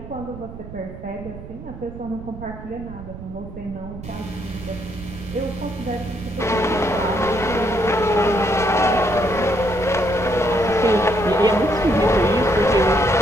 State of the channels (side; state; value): right; noise; rumble, 13 dB below the sound